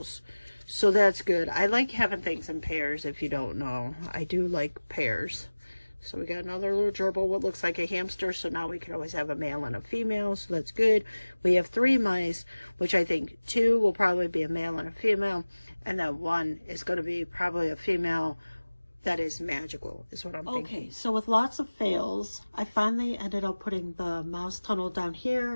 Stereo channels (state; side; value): inverted; both; correlation -1.00